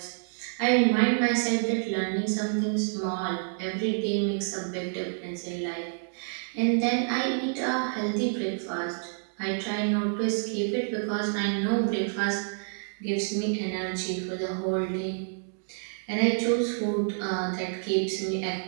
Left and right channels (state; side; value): silent; left; digital silence